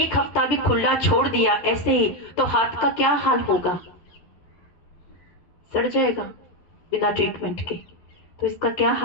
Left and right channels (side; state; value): right; late; 11 ms